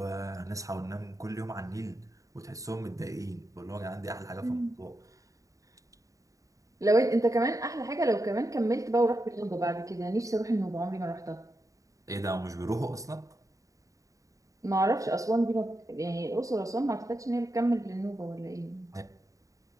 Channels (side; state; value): left; late; 0.16 ms